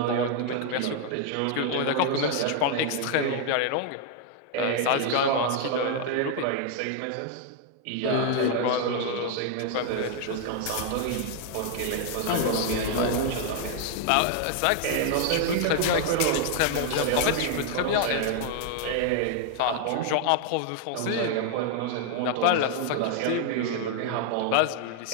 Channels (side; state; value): both; different; correlation 0.00